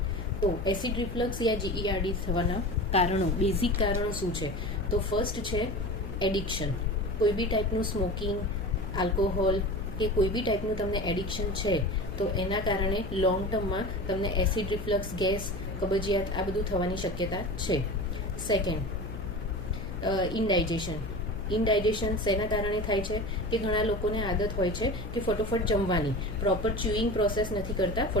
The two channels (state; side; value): noise; left; hum, 9 dB below the sound